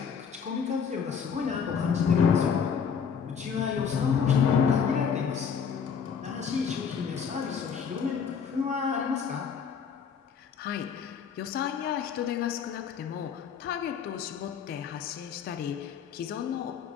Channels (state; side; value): quieter; right; 6.8 dB